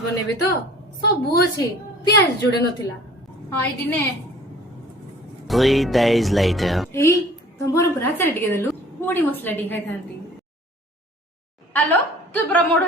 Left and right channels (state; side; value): normal; both; correlation 0.49